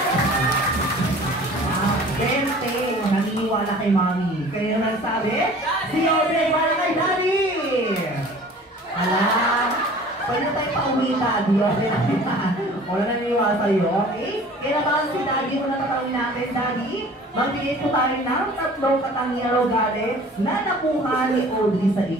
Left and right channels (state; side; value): normal; both; correlation 0.47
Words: Gente, naniniwala kay Mami. Kayo na nagsabi? Si Audrey para kay Daddy! Alam, pwede tayo pauwi Daddy. Wala naniniwala sa'yo, okay? Kaya naman si Daddy, kung natatawin natin, Daddy, magbigay po tayo ng 3 katangian o galit na nakuha ni Audrey sa